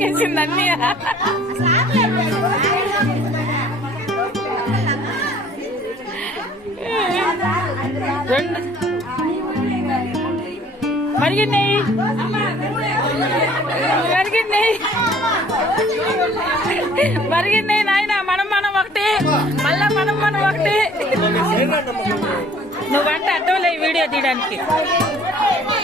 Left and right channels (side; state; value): both; normal; correlation 0.55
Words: అన్నీ. రెండు మరిగినాయి మరిగినాయి నాయన. మనం ఒకటి మళ్ళా మనం ఒకటి. నువ్వంట అడ్డోలే వీడియో తీయడానికి.